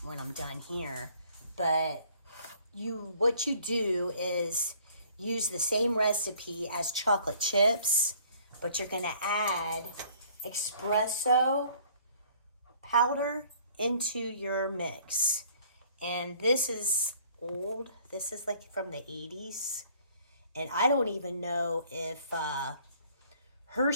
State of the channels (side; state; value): both; inverted; correlation -0.57